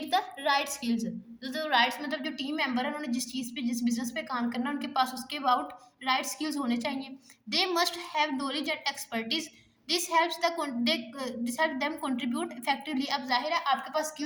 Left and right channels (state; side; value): identical; both; correlation 1.00